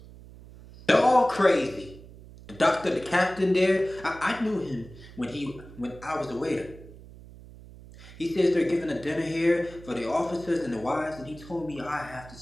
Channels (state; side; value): noise; right; hum, 18 dB below the sound